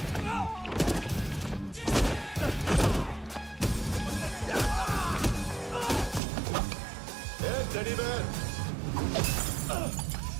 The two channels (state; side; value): drops out; left; at 6.2 s